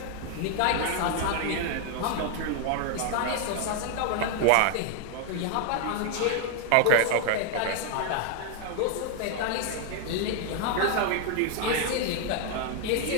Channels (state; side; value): different; both; correlation 0.00